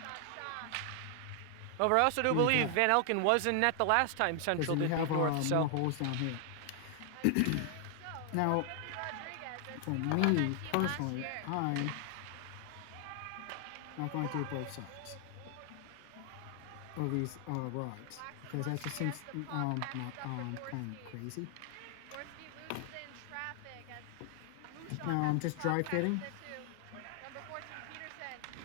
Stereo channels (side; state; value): both; different; correlation 0.00